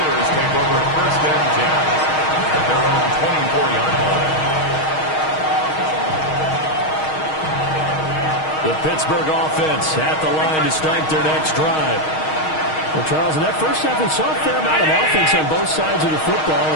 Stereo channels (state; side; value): late; right; 6.4 ms